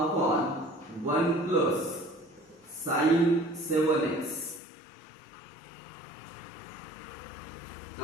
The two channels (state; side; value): drops out; right; at 4.6 s